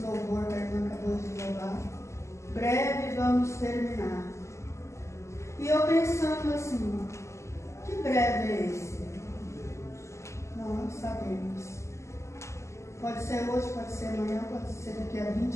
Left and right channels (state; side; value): late; right; 0.13 ms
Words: que a irmã acabou de louvar. Breve vamos terminar. E eu pensando assim, que breve é esse? Não sabemos. Pode ser hoje, pode ser amanhã, pode ser daqui a